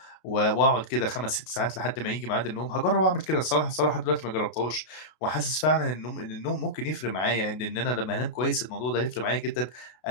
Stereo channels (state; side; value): late; right; 32 ms